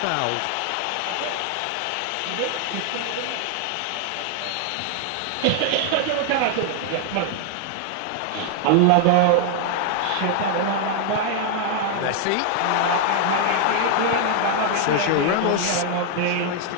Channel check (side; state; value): both; different; correlation 0.00